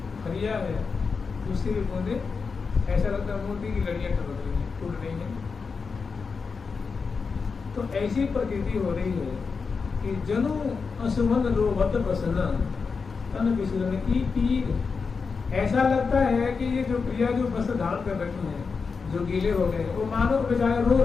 फरिया है उससे भी बूंदे ऐसा लगता है मोती की लड़ियाँ टपक रही हैं, टूट रही हैं। तो ऐसी प्रकृति हो रही है कि जनु असुमन रोवत बसना तन विसलन की पीर। ऐसा लगता है कि ये जो प्रिया जो वस्त्र धारण कर रखी हैं, जो गीले हो गए, वो मानव बेचारे रो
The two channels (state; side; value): quieter; right; 5.1 dB